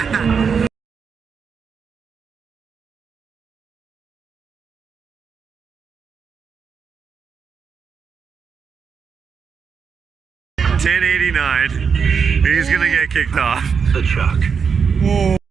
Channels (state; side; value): quieter; left; 6.2 dB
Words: $10.89. He's gonna get kicked off. The chuck.